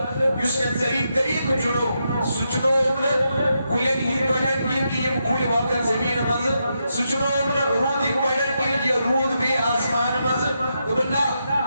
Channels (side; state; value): both; inverted; correlation -0.84